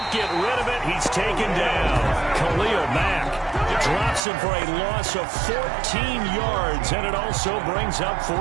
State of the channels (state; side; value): drops out; left; at 4.2 s